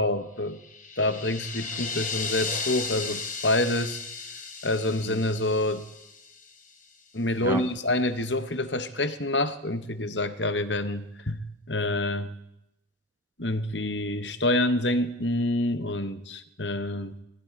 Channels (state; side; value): normal; both; correlation 0.17